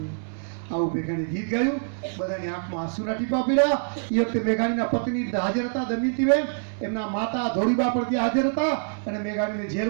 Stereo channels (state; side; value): silent; left; 61 dB below the other